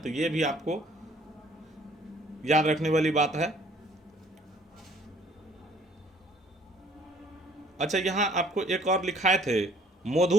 तो ये भी आपको याद रखने वाली बात है। अच्छा, यहाँ आपको एक और लिखाए थे,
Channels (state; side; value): normal; both; correlation 0.59